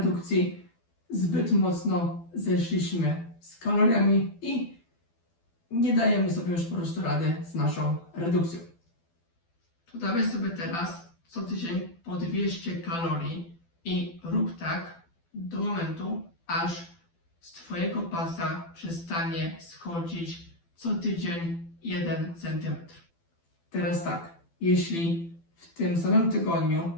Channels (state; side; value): late; right; 12 ms